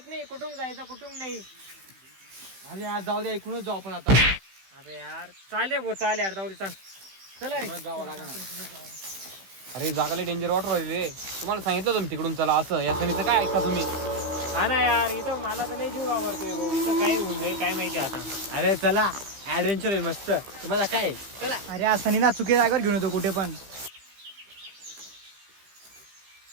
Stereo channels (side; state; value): left; late; 15 ms